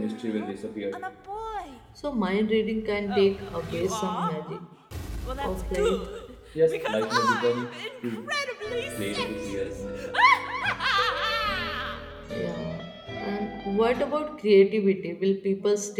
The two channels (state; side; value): identical; both; correlation 1.00